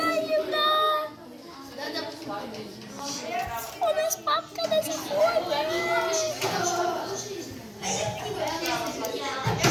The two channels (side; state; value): both; identical; correlation 1.00